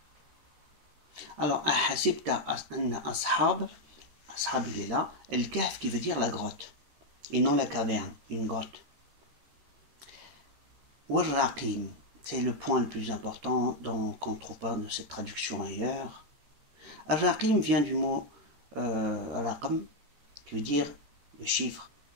Alors, ahasibta anna ashab. Ashab, il est là. El-kahf qui veut dire la grotte. Et non la caverne, une grotte. Wal-raqim. C'est le point le plus important qu'on ne trouve pas de cette traduction ailleurs. Al-raqim vient du mot raqam, qui veut dire le chiffre.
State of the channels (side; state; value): left; late; 13 ms